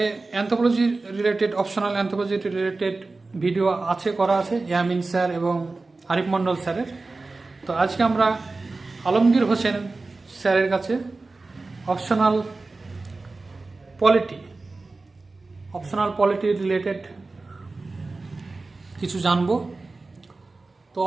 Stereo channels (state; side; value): quieter; left; 3.5 dB